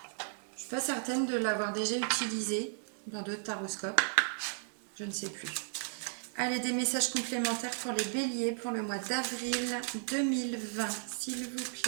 Je suis pas certaine de l'avoir déjà utilisé dans d'autres taroscopes. Je ne sais plus. Allez, des messages complémentaires pour les béliers pour le mois d'avril 2020, s'il vous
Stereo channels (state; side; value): silent; left; digital silence